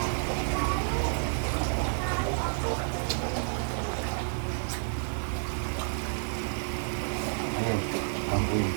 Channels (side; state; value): left; silent; digital silence